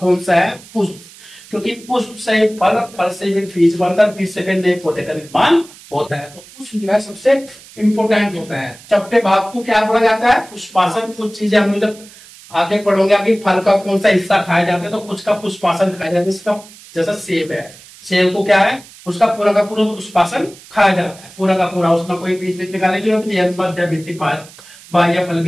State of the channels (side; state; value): right; noise; hiss, 21 dB below the sound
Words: सा है? पुष्प। क्योंकि पुष्प से फल, फल से फिर बीज बनता है, बीज से फिर नए पौधे का निर्माण होता है। तो पुष्प जो है सबसे इंपोर्टेंट होता है। चपटे भाग को क्या बोला जाता है? पुष्पासन। कुछ चीजें हम जब आगे पढ़ोगे कि फल का कौन सा हिस्सा खाया जाता है, तो कुछ का पुष्पासन खाया जाता है। इसका जैसा सेब है, सेब को क्या है, उसका पूरा का पूरा पुष्पासन खाया जाता है, पूरा का पूरा। उसमें कोई बीज बीज निकालने की जरूरत नहीं है, मध्य भित्ति बाह्य फल